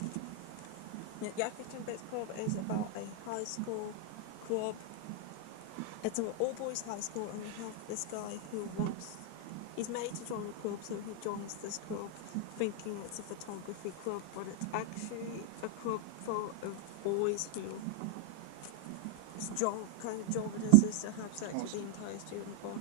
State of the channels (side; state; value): both; different; correlation 0.00